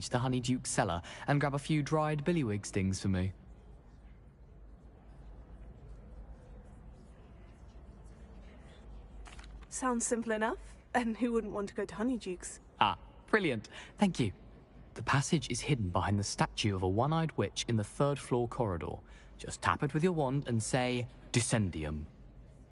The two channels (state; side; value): identical; both; correlation 1.00